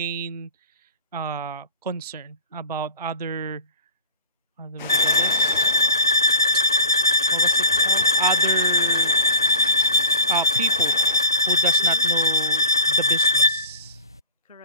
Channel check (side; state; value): both; inverted; correlation -0.37